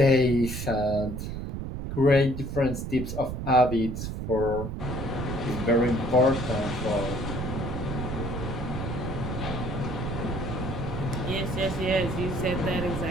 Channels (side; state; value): right; noise; rumble, 5 dB below the sound